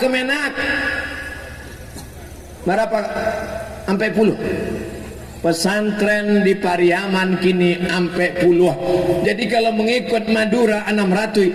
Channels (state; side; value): identical; both; correlation 1.00